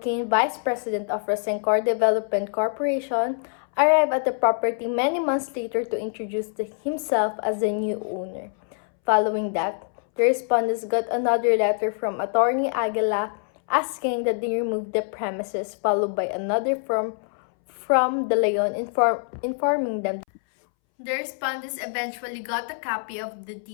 Vice President of Rosencor Development Corporation, arrived at the property many months later to introduce himself as the new owner. Following that, the respondents got another letter from attorney Aguila asking that they remove the premises, followed by another from De Leon informing them. The respondents eventually got a copy of the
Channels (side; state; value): right; silent; 62 dB below the other